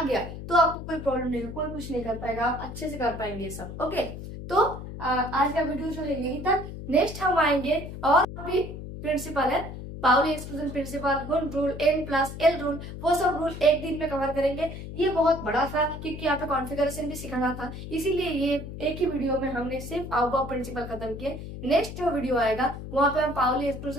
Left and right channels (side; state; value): left; noise; hum, 10 dB below the sound